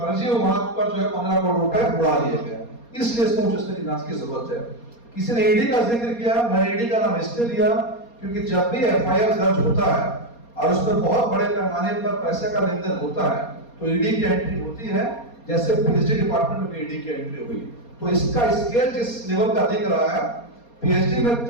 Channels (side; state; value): right; late; 4.2 ms